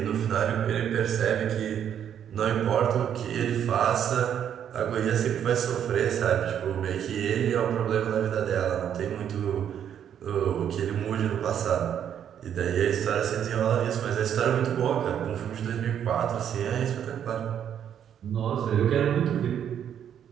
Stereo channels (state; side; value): quieter; left; 9.2 dB